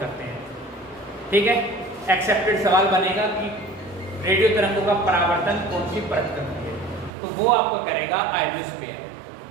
हैं। ठीक है, एक्सेप्टेड सवाल बनेगा कि रेडियो तरंगों का परावर्तन कौन सी परत करती है, तो वो आपको करेगा आयोनोस्फीयर।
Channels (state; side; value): drops out; left; at 7.1 s